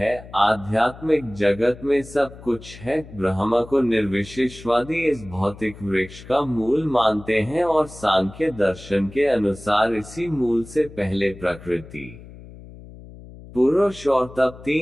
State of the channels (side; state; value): left; noise; hum, 17 dB below the sound